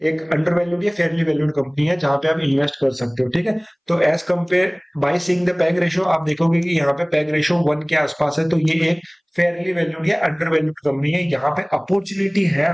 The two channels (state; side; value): identical; both; correlation 1.00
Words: एक अंडर वैल्यूड या फेयरली वैल्यूड कंपनी है जहां पे आप इन्वेस्ट कर सकते हो। ठीक है, तो as compare by seeing the PEG ratio आप देखोगे कि यहाँ पे पैग रेशियो 1 के आसपास है, तो ये एक फेयरली वैल्यूड या अंडर वैल्यूड कंपनी है। यहाँ पे अपॉर्चुनिटी है